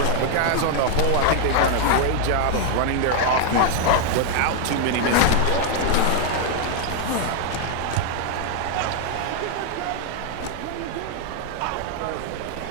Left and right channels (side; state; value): both; different; correlation 0.00